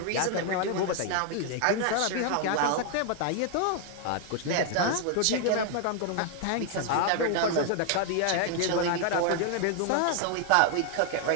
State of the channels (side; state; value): both; different; correlation 0.00